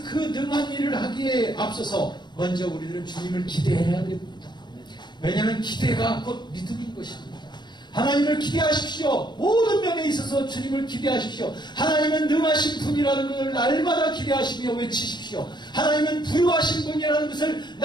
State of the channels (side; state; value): right; late; 0.21 ms